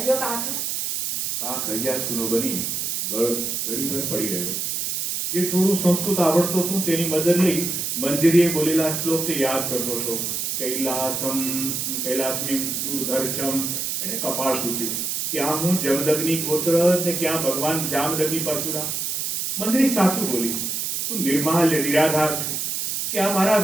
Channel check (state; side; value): noise; right; hiss, 1 dB below the sound